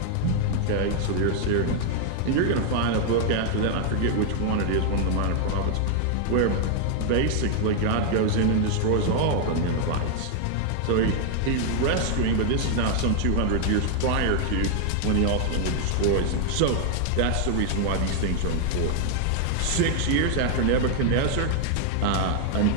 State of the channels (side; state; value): both; different; correlation 0.00